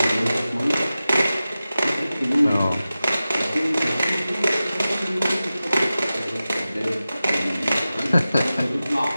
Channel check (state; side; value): inverted; both; correlation -0.94